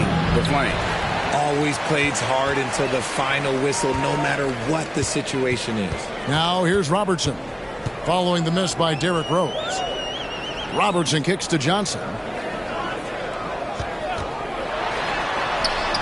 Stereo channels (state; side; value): identical; both; correlation 1.00